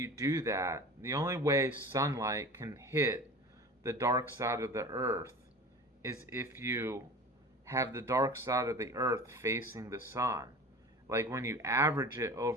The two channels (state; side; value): normal; both; correlation 0.36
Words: do that, the only way sunlight can hit the dark side of the earth is if you have the dark side of the earth facing the sun. Like when you average it